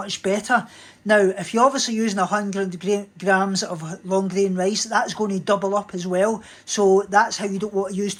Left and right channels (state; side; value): identical; both; correlation 1.00